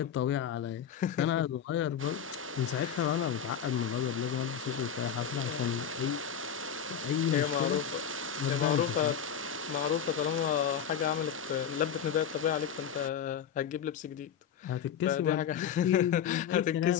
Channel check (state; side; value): quieter; right; 8.2 dB